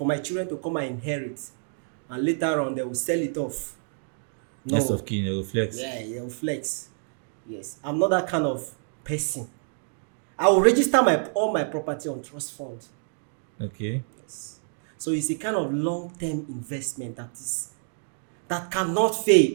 my children to come and inherit, and later on they will sell it off. No. Next of kin, they will flex. Yeah, they will flex. Yes, I'm not that kind of person. I will register all my property on trust fund. Okay. Yes. So it's a kind of long-term investment that cannot fail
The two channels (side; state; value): left; silent; 60 dB below the other